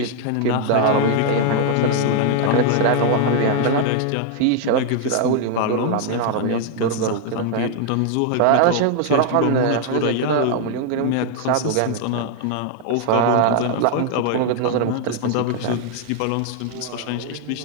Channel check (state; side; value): different; both; correlation 0.00